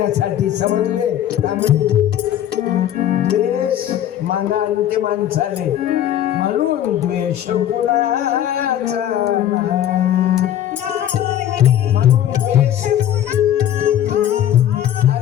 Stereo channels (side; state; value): right; quieter; 11.2 dB